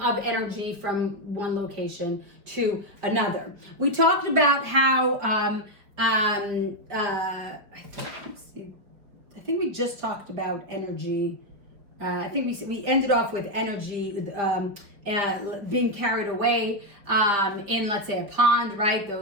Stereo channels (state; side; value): late; left; 4.8 ms